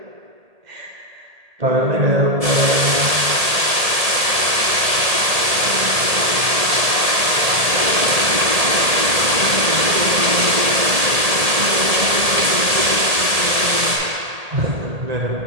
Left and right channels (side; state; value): left; late; 1.8 ms